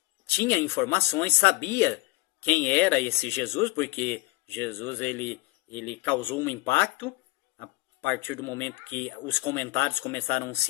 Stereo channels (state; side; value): quieter; right; 21.0 dB